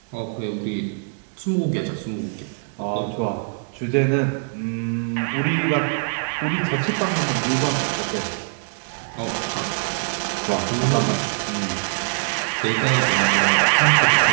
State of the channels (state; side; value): silent; left; digital silence